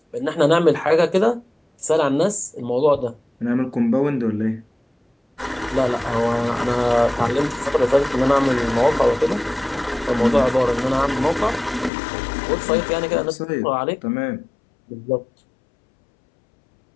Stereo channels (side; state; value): right; drops out; at 11.9 s